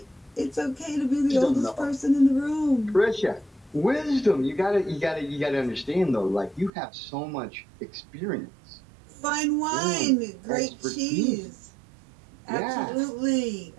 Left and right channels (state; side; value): drops out; left; at 6.7 s